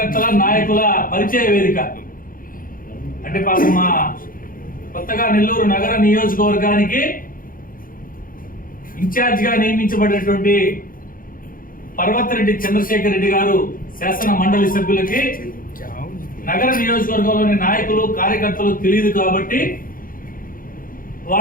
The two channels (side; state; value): right; late; 0.41 ms